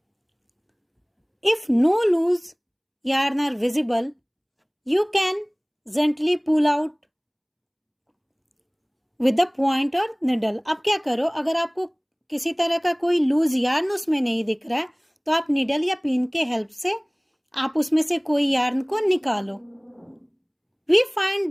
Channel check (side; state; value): both; identical; correlation 1.00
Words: If no loose yarn are visible, you can gently pull out with the point or needle. अब क्या करो, अगर आपको किसी तरह का कोई लूज यार्न उसमें नहीं दिख रहा है तो आप निडल या पिन के हेल्प से आप उसमें से कोई यार्न को निकालो। We